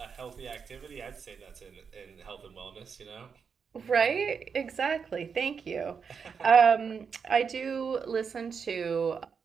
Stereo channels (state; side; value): quieter; left; 6.1 dB